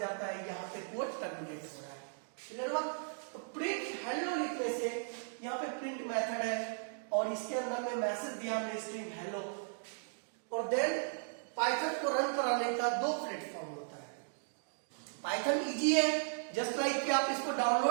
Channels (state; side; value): silent; left; digital silence